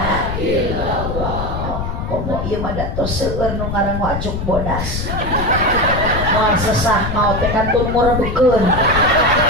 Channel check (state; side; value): noise; left; rumble, 4 dB below the sound